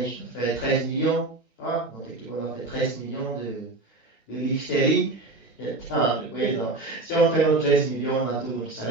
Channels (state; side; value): quieter; left; 3.0 dB